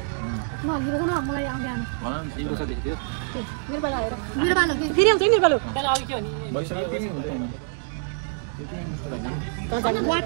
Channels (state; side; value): silent; left; 61 dB below the other